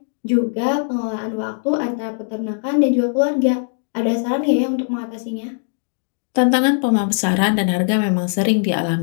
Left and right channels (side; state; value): right; silent; digital silence